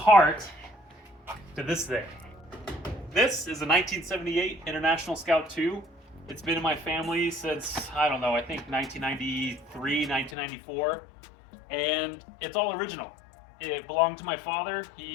to this thing. This is a 1978 International Scout II. It's been in my family since, I don't know, I think 1993, 1994. And it's all original. It belonged to my father.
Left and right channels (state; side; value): drops out; right; at 10.4 s